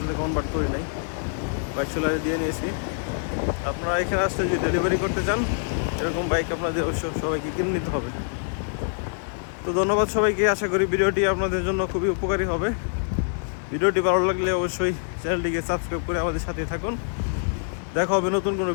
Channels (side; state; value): right; silent; digital silence